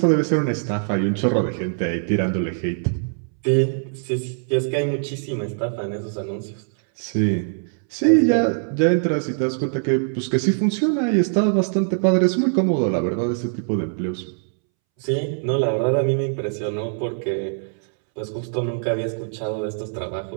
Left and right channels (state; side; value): silent; left; 64 dB below the other